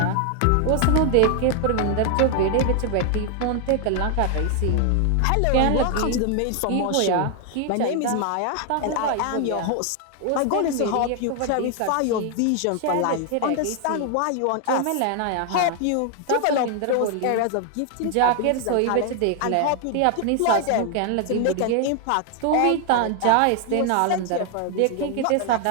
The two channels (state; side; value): different; both; correlation 0.00